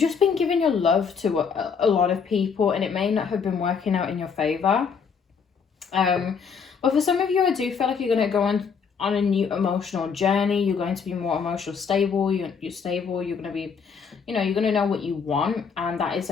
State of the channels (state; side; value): quieter; right; 6.1 dB